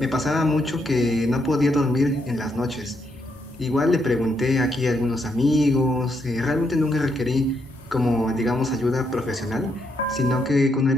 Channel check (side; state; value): both; normal; correlation 0.78